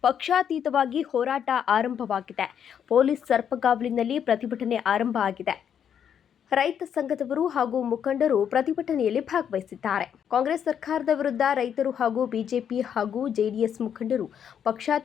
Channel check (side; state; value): right; quieter; 8.5 dB